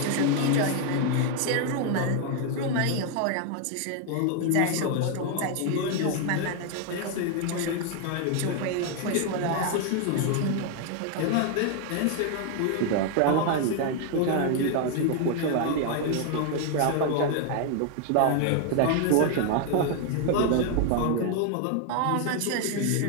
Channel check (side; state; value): both; different; correlation 0.00